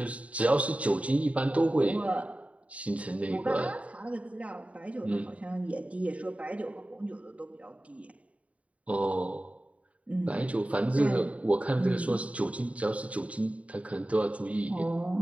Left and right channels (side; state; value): left; late; 0.066 ms